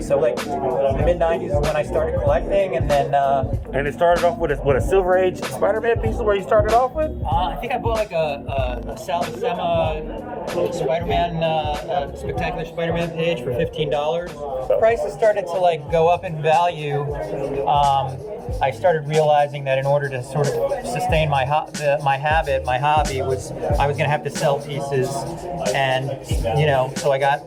like the mid '90s is when I started collecting, and then And it started off with a Silver Age Spider-Man piece where you started off with? I think I bought like a Sal Buscema Spider-Man, Spectacular Spider-Man page for $15. Prices started to like go up in value. I started realizing that in order to sort of sustain my hobby was I was going to have to sell pieces, and you know, so I got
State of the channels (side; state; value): both; identical; correlation 1.00